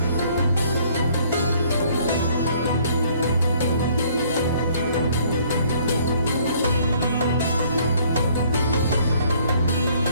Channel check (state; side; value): inverted; both; correlation -0.60